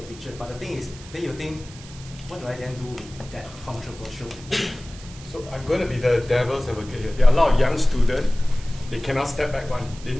picture. But the thing is, then you think, what do I then do with that controversial picture? So I'm going to be the devil's advocate here. There are a lot of young students, they cannot step back one. They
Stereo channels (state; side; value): noise; right; hiss, 18 dB below the sound